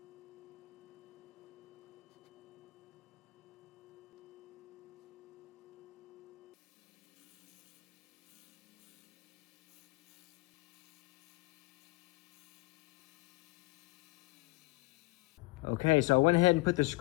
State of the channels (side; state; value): right; quieter; 22.8 dB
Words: Okay, so I went ahead and put the